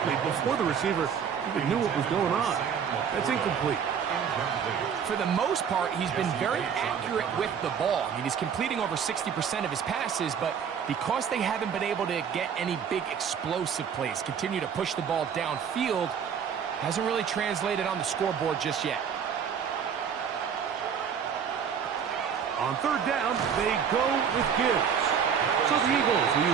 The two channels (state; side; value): quieter; left; 7.4 dB